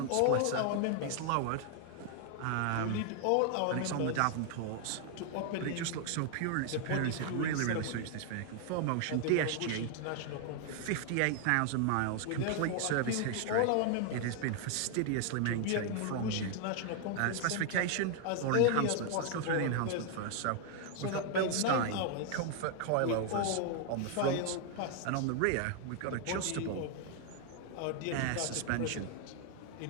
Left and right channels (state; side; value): different; both; correlation 0.00